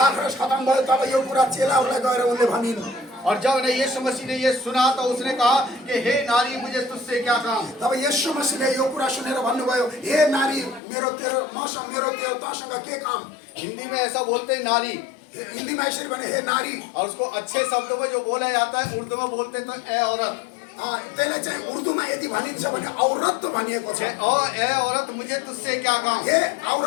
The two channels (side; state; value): right; drops out; at 10.8 s